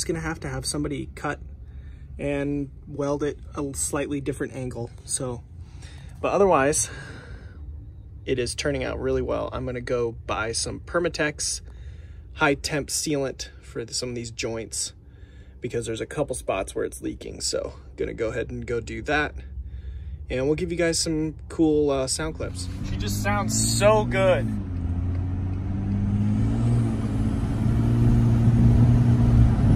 gonna have to have somebody cut and weld it a slightly different angle. So, but otherwise, it is turning out really well. I'm gonna go buy some Permatex high temp sealant for some of these joints, because there's a couple spots where it's leaking. So gonna go ahead and go do that. And we'll give you guys some cool sound clips. She just sounds so good.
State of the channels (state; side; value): identical; both; correlation 1.00